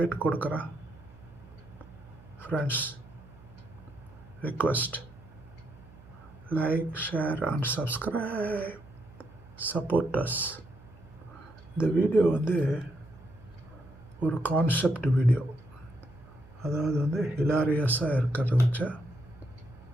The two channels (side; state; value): right; noise; hum, 22 dB below the sound